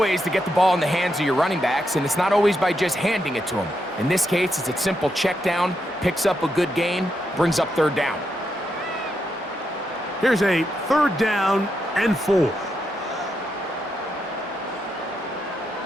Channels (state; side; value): normal; both; correlation 0.83